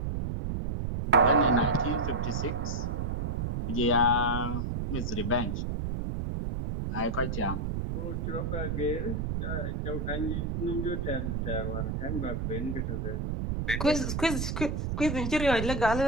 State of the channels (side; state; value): right; noise; rumble, 1 dB below the sound